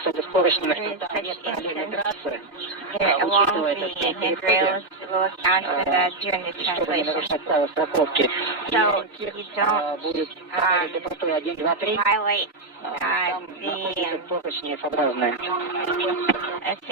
с поручнями, is что там such нет параллельной instance. трассы. Along Учитывая the это, что handrails will account for that during the чтобы не translation. нарушать правила страховки. So you don't Будет для простой 1, 2, 3. violate Там находятся поручни F-образные.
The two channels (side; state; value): left; quieter; 3.0 dB